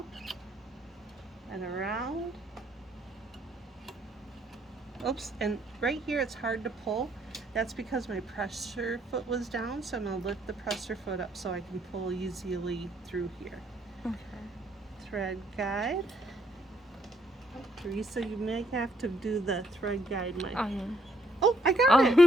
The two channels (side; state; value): both; normal; correlation 0.70